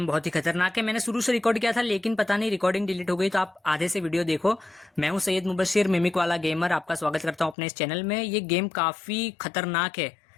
बहुत ही खतरनाक है। मैंने शुरू से रिकॉर्ड किया था लेकिन पता नहीं रिकॉर्डिंग डिलीट हो गई, तो आप आधे से वीडियो देखो। मैं हूं सैयद मुबशिर मिमिक वाला गेमर, आपका स्वागत करता हूं अपने इस चैनल में। ये गेम काफ़ी खतरनाक है।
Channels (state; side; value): drops out; right; at 7.6 s